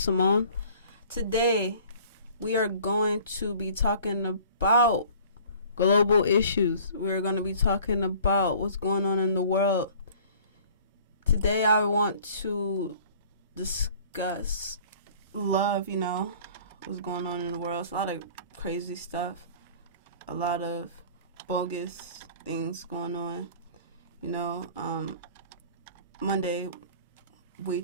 Today, we are going to be talking about global issues. We're going to be talking about what's going on in the world. Today, I want to discuss love, what's going on in the world. It's a lot of crazy stuff, a lot of bogus things going on, Monday, we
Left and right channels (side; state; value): both; inverted; correlation -0.50